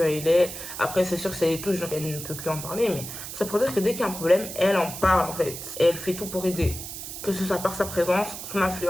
à lait. Après, c'est sûr que ça les touche, donc elle ne peut plus en parler, mais ça pour dire que dès qu'il y a un problème, elle en parle en fait. Et elle fait tout pour aider. Que ce soit par sa présence, son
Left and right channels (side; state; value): right; noise; hiss, 9 dB below the sound